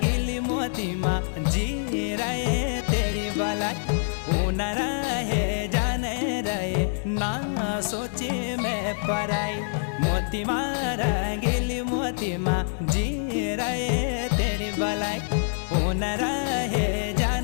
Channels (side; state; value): right; silent; digital silence